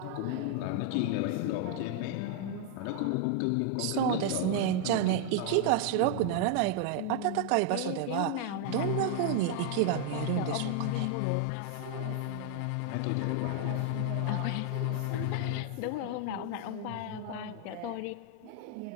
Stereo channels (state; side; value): different; both; correlation 0.00